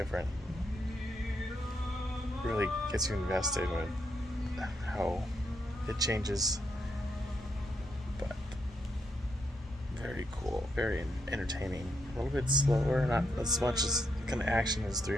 Really gets you invested with how it changes, but very cool, very entertaining. A little bit slower, not as much as kind of action as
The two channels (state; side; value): normal; both; correlation 0.80